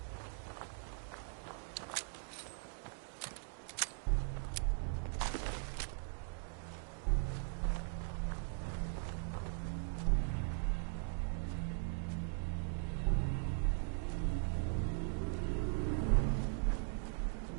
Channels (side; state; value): left; silent; 51 dB below the other